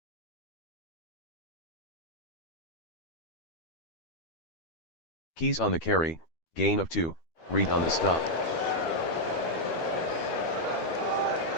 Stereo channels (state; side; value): late; right; 12 ms